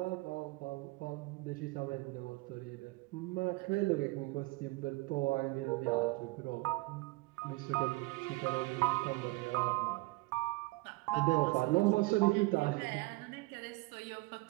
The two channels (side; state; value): left; quieter; 22.9 dB